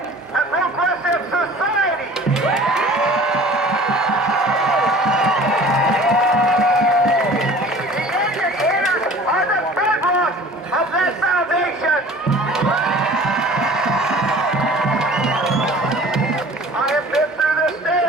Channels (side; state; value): both; normal; correlation 0.45